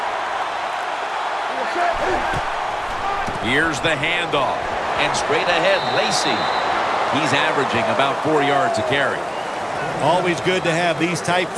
Here's the handoff. And straight ahead, Lacey. He's averaging about 4 yards a carry. Always good to have these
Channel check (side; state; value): both; identical; correlation 1.00